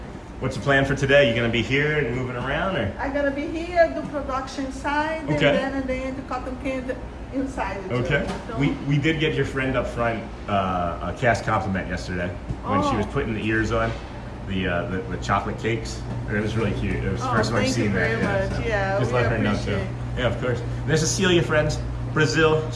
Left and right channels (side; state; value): both; identical; correlation 1.00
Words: what's the plan for today? You gonna be here and moving around, or? I'm gonna be here, do production side, Okay. and then the cotton candy inside. Okay. So, We did get your friend up front a cast compliment yesterday when she was putting the ears on the chocolate cakes. It was really cute. It was the first time I've seen that. Thank you very much. Yeah, just we let her know too. appreciate. Yeah, of course. There's Cecilia, friends. Brazil,